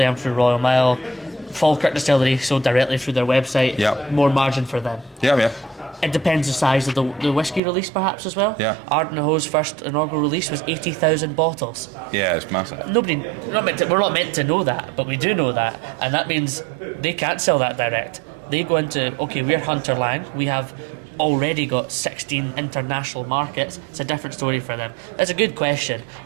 and through Royal Mile. Falkirk distillery sold directly through their website. More margin for them. It depends the size of the whiskey release, perhaps, as well. Ardnahoe's first inaugural release was 80,000 bottles. Yeah, it's massive. We're not meant to know that, but we do know that, and that means they can't sell that direct. They go into, we're Hunter Lang, we have already got 16 international markets. It's a different story for them. That's a good question,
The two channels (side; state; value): left; drops out; at 7.6 s